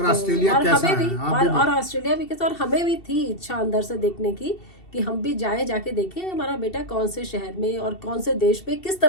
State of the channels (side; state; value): right; late; 2.7 ms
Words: ऑस्ट्रेलिया और कैसा हमें है, भी आप भी और ऑस्ट्रेलिया भी कैसा। और हमें भी थी इच्छा अंदर से देखने की कि हम भी जाके देखें हमारा बेटा कौन से शहर में और कौन से देश में किस